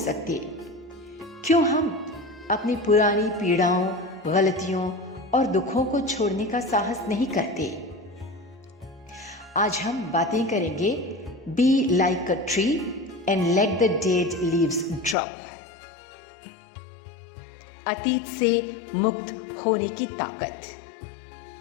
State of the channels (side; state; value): right; drops out; at 15.2 s